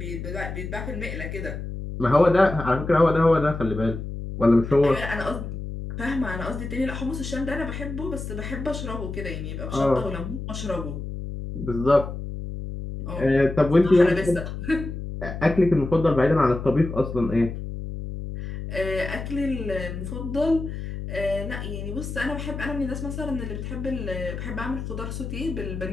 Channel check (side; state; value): left; noise; hum, 7 dB below the sound